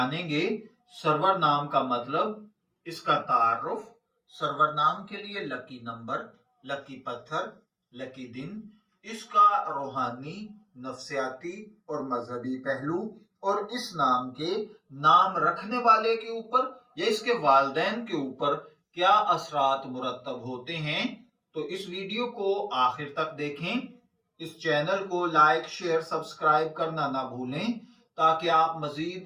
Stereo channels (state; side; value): identical; both; correlation 1.00